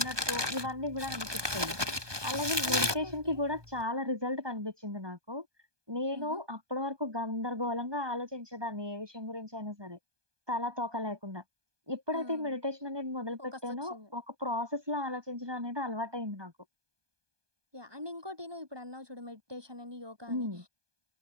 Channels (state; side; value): late; left; 1.2 ms